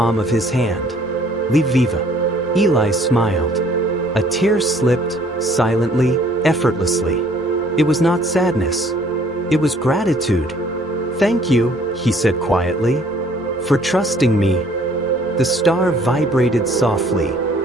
of his hand. Leave viva. Eli smiled. A tear slipped, silently, effortlessly. It was not sadness. It was gratitude. Thank you, he said quietly, for trusting me. The star vibrated softly,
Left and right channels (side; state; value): right; noise; rumble, 29 dB below the sound